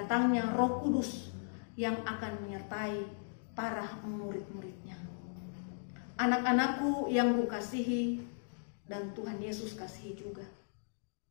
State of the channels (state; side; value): silent; right; digital silence